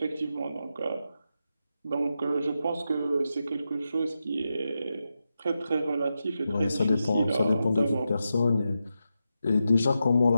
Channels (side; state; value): both; inverted; correlation -0.88